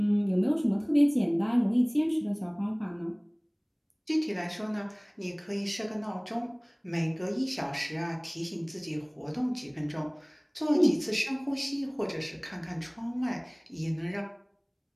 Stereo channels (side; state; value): both; identical; correlation 1.00